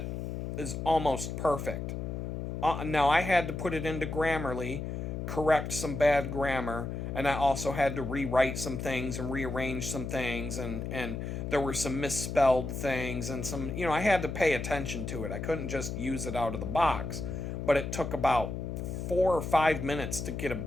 is almost perfect. Now, I had to put it into Grammarly, correct some bad grammar, and I also had to rewrite some things and rearrange some things, and there were some misspelled things and some, I had to pay attention to it. I couldn't just use it out of the box, but it took about 4 or 5 minutes to get a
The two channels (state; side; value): noise; left; hum, 4 dB below the sound